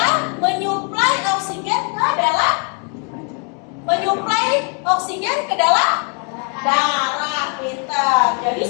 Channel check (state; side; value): quieter; right; 36.7 dB